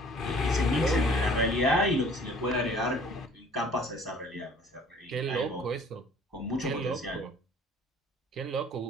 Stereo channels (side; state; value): both; normal; correlation 0.52